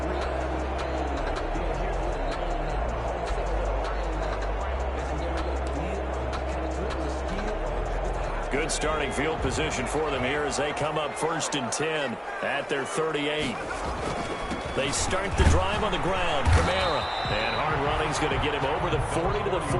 Good starting field position for them here as they come up first and 10 at their 38. They start the drive on the ground. Kamara. And hard running's going to get him over the 40 to the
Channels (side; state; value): both; identical; correlation 1.00